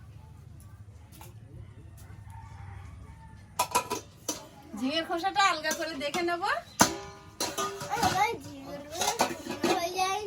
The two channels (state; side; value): identical; both; correlation 1.00